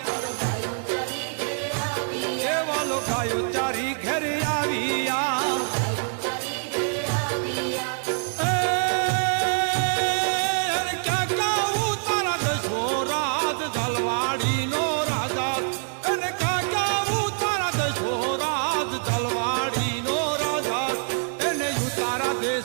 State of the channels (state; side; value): silent; left; digital silence